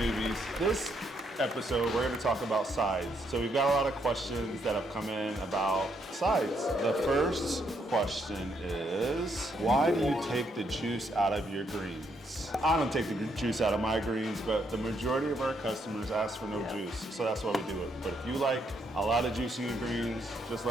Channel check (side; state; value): both; normal; correlation 0.75